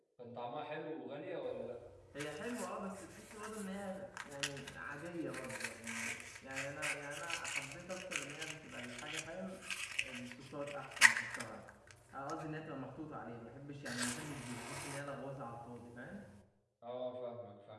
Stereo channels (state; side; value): identical; both; correlation 1.00